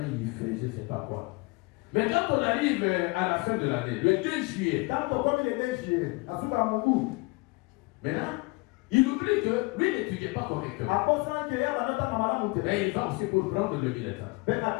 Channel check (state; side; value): quieter; right; 26.5 dB